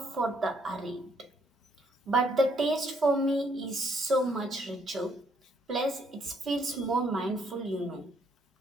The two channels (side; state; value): both; normal; correlation 0.69